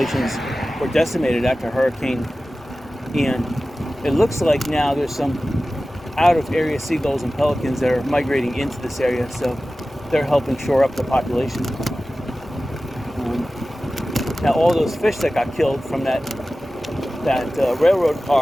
were decimated after Hurricane Ian. It looks like now there's some out-of-area seagulls and pelicans that are migrating into this area, so they're helping shore up the population. Now all those fish that got killed from that railroad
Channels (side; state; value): both; normal; correlation 0.96